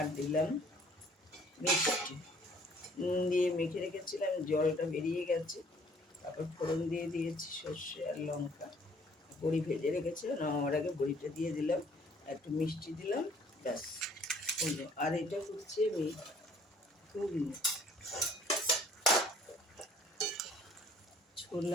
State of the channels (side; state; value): both; normal; correlation 0.58